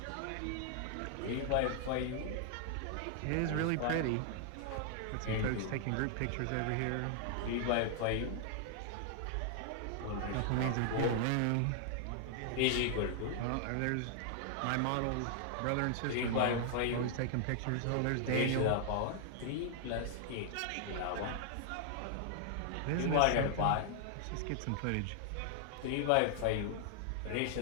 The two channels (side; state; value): both; different; correlation 0.00